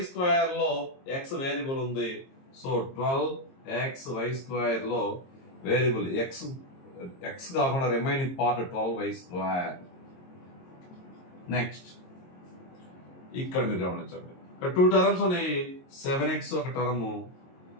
లో x వేరియబుల్ ఉంది. సో 12xy² లో వేరియబుల్ x కాకుండా రిమైనింగ్ పార్ట్ 12y². నెక్స్ట్ ఇక్కడ మీరు గమనించండి, ఇక్కడ 2 టర్మ్స్ ఉన్నాయి. 7x ఒక టర్మ్,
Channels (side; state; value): right; late; 22 ms